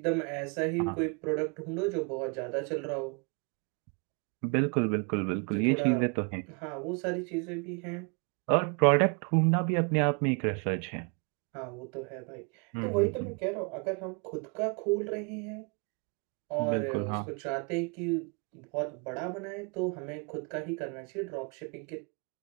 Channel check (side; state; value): left; quieter; 34.9 dB